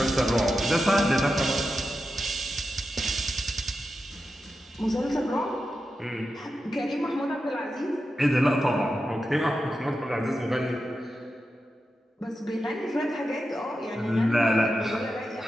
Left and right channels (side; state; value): both; normal; correlation 0.90